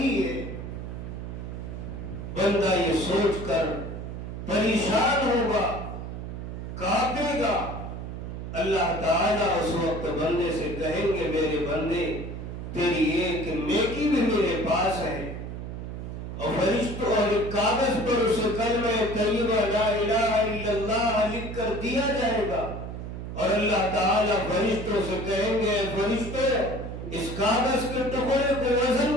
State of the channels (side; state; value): right; noise; hum, 7 dB below the sound